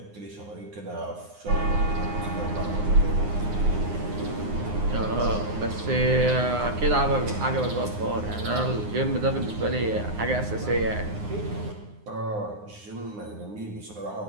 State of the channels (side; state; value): left; late; 9.7 ms